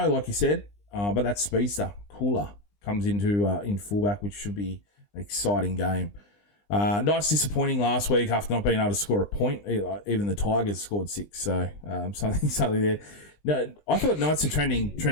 like you said. But that speedster, Cooler, comes into in fullback, which should be an exciting game. Knights disappointing last week after not being able to score a point. Even the Tigers scored 6, so something there. No, I thought Knights are trending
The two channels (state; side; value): late; right; 20 ms